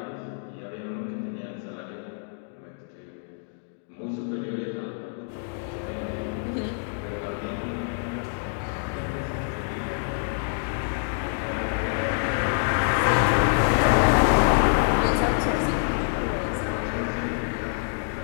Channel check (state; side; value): silent; right; 59 dB below the other